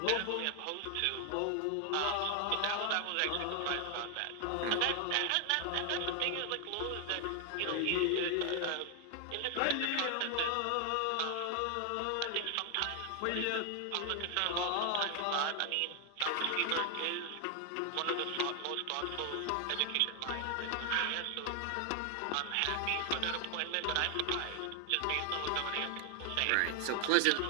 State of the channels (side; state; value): both; different; correlation 0.00